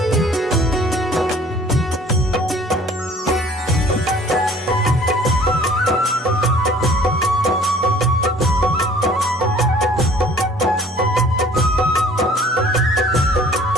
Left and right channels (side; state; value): both; normal; correlation 0.53